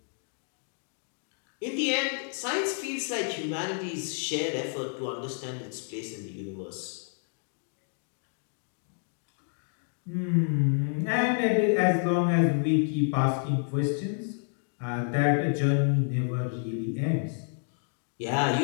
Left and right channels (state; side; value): silent; right; 56 dB below the other